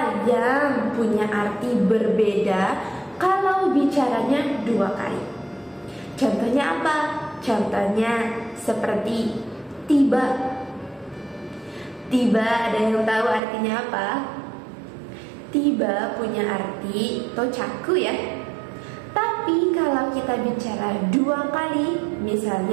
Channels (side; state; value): left; drops out; at 13.4 s